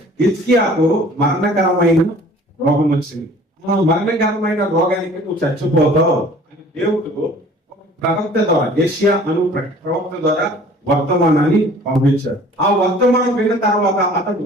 హిజ్కియాకు మరణకరమైన రోగం వచ్చింది. మరణకరమైన రోగానికి నువ్వు చచ్చిపోతావు అని దేవుడు ప్రవక్త ద్వారా, యెషయా అను ప్రవక్త ద్వారా వర్తమానాన్ని పంపించారు. ఆ వర్తమానం విన్న తర్వాత అతడు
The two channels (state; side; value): normal; both; correlation 0.50